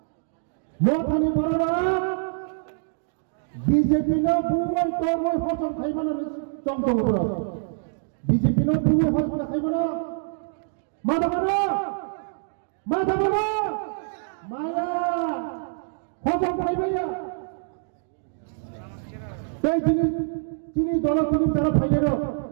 মথানি বড় বিজেপি না বুবই তবই ফসল খাইব না চমচম করে বিজেপি না বুবই ফসল খাইব না মাথা মাথা মায়া ফসল খাইবাইয়া এই চিনি দল চিনি তারা ফাইলে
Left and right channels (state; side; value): silent; left; digital silence